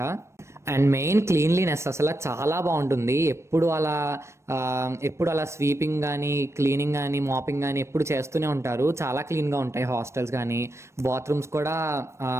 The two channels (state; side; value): late; left; 0.13 ms